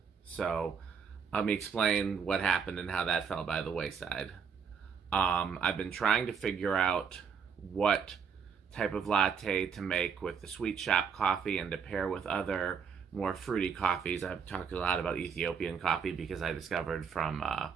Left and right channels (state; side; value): quieter; left; 6.5 dB